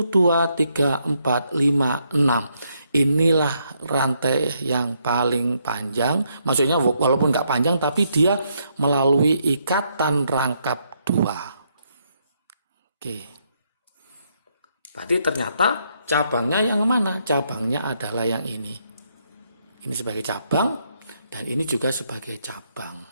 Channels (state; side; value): inverted; both; correlation -0.75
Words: 2, 3, 4, 5, 6. Inilah rantai yang paling panjang. Maksudnya walaupun nggak panjang, tapi dia melalui ikatan rangkap 2. Oke. Berarti ternyata cabangnya yang mana? Cabangnya adalah yang ini. Ini sebagai cabang dan ini juga sebagai cabang.